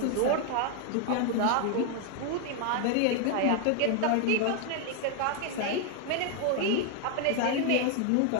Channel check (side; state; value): both; different; correlation 0.00